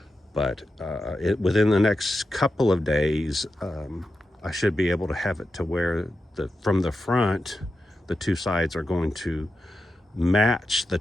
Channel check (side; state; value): both; normal; correlation 0.90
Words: But within the next couple of days, I should be able to have it to where from the front, the two sides are going to match the